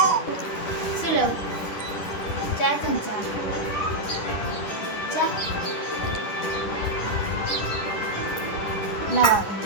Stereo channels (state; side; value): late; right; 10 ms